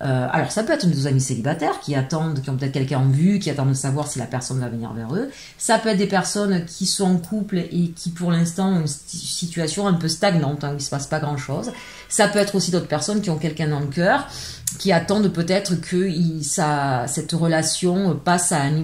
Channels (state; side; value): identical; both; correlation 1.00